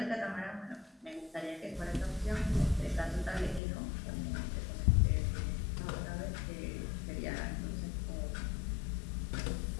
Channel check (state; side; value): drops out; right; at 3.6 s